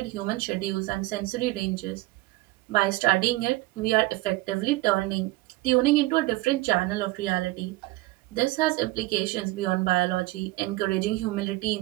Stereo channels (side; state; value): left; quieter; 19.8 dB